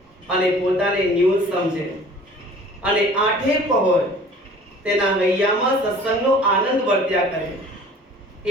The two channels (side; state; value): both; normal; correlation 0.48